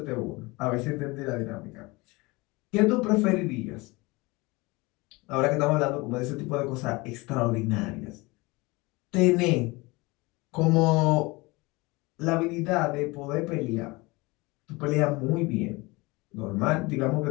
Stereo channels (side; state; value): right; quieter; 23.9 dB